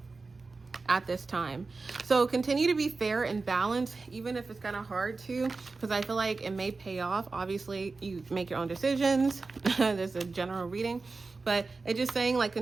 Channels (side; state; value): left; quieter; 4.0 dB